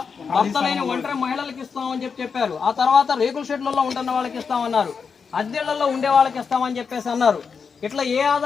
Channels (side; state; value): right; quieter; 5.8 dB